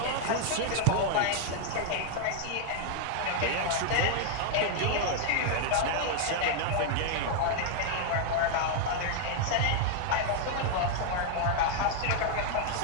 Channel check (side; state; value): both; different; correlation 0.00